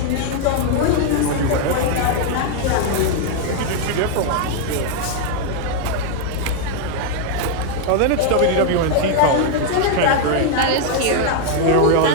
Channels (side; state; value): both; different; correlation 0.00